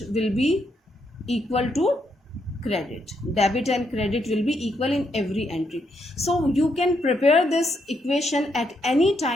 will be equal to credit. Debit and credit will be equal in every entry. So you can prepare this equation at any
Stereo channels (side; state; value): both; normal; correlation 0.78